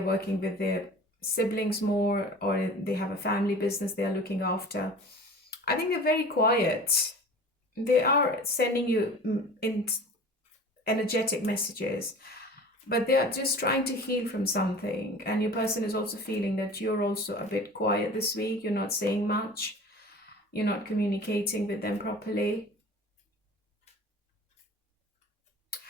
working with their siblings more, or they have a family business they are looking after. I think they're very quiet. They are sending you energetic messages, but they are just trying to heal from something. And your person is also feeling that you're also a bit quiet this week. You're not saying much. You're not communicating with them properly.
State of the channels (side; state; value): both; normal; correlation 0.41